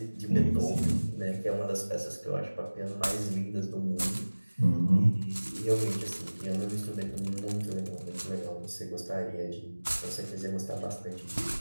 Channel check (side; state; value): both; inverted; correlation -1.00